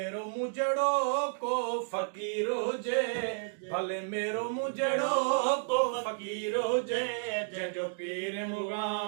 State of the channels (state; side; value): silent; left; digital silence